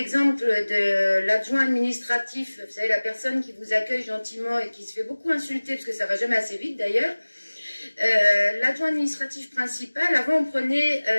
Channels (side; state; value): both; inverted; correlation -1.00